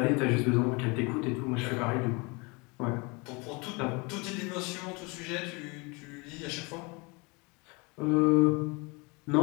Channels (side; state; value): right; quieter; 28.5 dB